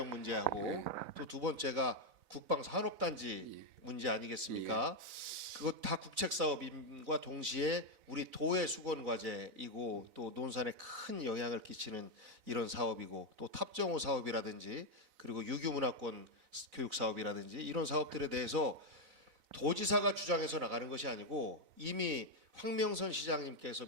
문제하고 또 두 번째가 국방산업단지 문제 아니겠습니까? 그것 다 국책 사업임과 동시에 우리 도의 수건 과제이고 또 논산에 큰 영향을 끼치는 이런 사업이고 또 탑정호 사업이라든지 그리고 유교 문화권 교육 사업이라든지 이런 사업들에 대해서 도지사가 주장해서 나가는 것이 아니고 이미 황명선 시장님께서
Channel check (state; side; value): late; left; 4.0 ms